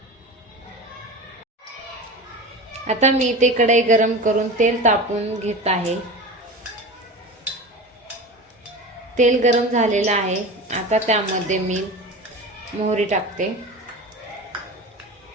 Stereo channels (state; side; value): normal; both; correlation 0.30